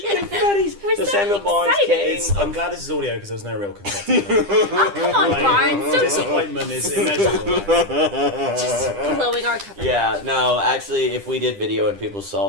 Confetti! So Samuel Barnes came... I'm glad this is audio because there was no real confetti. Oh, come on, Barnes. Don't Disappointment is immeasurable. just blowing our cover. Yeah, no, actually, if we did video and people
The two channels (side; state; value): left; late; 10 ms